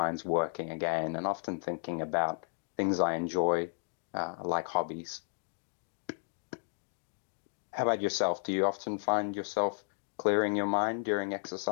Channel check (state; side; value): silent; right; 56 dB below the other